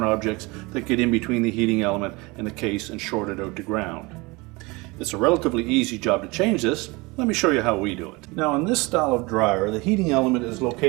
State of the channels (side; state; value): left; quieter; 24.8 dB